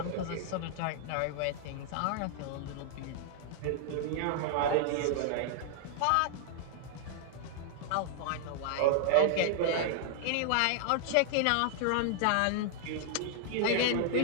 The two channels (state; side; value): different; both; correlation 0.00